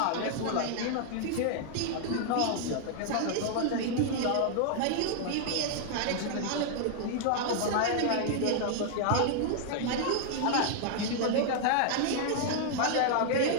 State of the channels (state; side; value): different; both; correlation -0.01